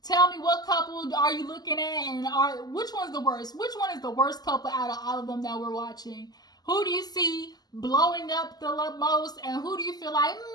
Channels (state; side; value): late; right; 0.20 ms